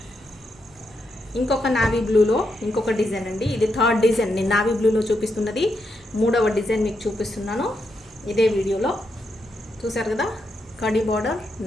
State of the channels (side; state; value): both; normal; correlation 0.82